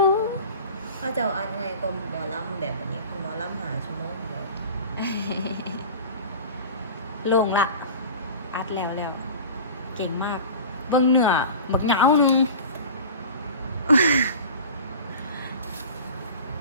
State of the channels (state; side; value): inverted; both; correlation -0.37